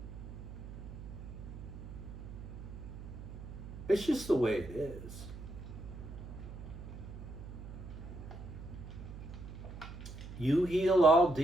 It's just the way it is. You heal, I'll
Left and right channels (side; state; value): right; noise; hum, 11 dB below the sound